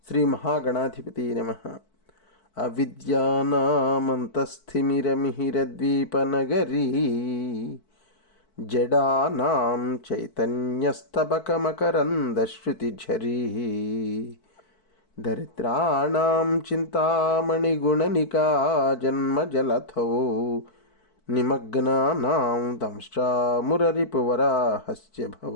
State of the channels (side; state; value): right; late; 4.6 ms